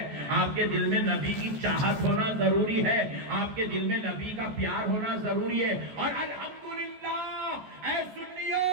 آپ کے دل میں نبی کی چاہت ہونا ضروری ہے, آپ کے دل میں نبی کا پیار ہونا ضروری ہے. اور الحمدللہ اے سنیو,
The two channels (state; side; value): late; left; 14 ms